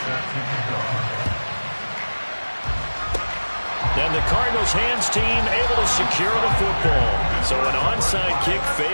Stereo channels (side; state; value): both; inverted; correlation -1.00